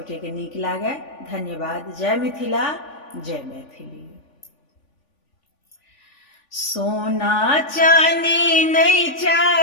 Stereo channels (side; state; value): right; late; 3.5 ms